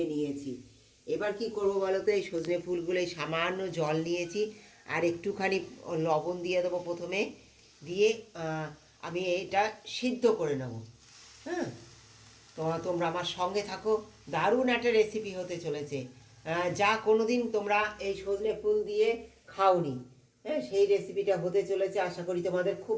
নিয়েছি। এবার কি করব বলো তো, এই সজনে ফুলগুলো সামান্য জল নিয়েছি আর একটুখানি লবণ দিয়ে দেবো প্রথমে, দিয়ে আমি এটা সিদ্ধ করে নেব। হ্যাঁ, তোমরা আমার সঙ্গে থাকো, দারুণ একটা রেসিপি হতে চলেছে। যা কোনোদিন তোমরা এই সজনে ফুল দিয়ে খাওনি, হ্যাঁ, সেই রেসিপিটা হতে চলেছে। আশা করি তোমাদের খুব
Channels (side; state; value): both; identical; correlation 1.00